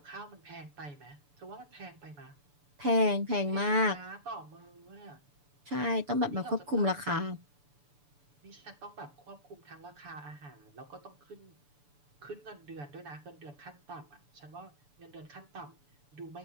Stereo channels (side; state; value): left; late; 6.9 ms